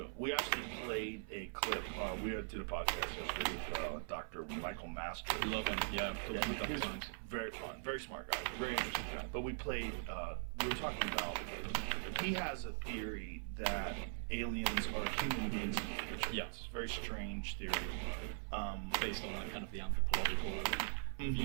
We actually played a clip. We did a podcast yesterday with Dr. Michael Master. Love him. Yeah, I've talked to him a He couple was times. very fun, very smart guy, very interesting guy. But we played. We were talking about. He has a theory that aliens are human beings in the future. Yeah. It's a very strange theory. Based on like kind of the anthropological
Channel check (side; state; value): left; silent; 50 dB below the other